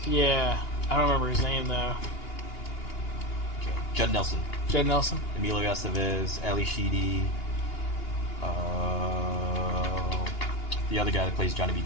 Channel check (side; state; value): right; late; 2.8 ms